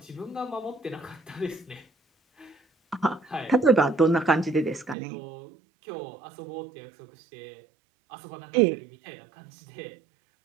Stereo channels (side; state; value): left; drops out; at 5.0 s